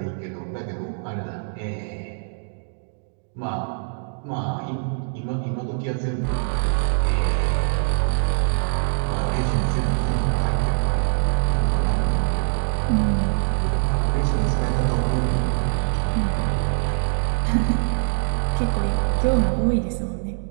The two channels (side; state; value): left; silent; digital silence